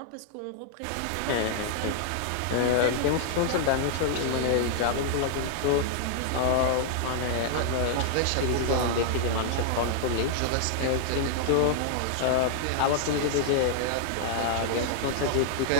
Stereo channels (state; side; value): different; both; correlation -0.01